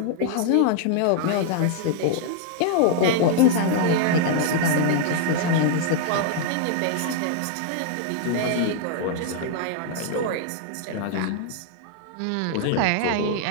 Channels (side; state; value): both; different; correlation -0.01